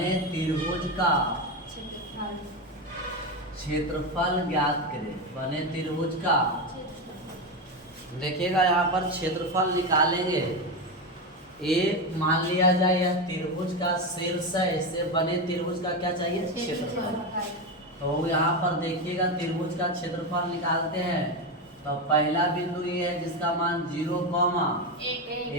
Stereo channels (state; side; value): normal; both; correlation 0.14